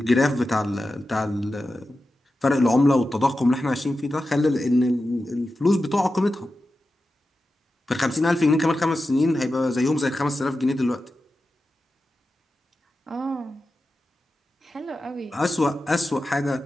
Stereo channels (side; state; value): both; normal; correlation 0.92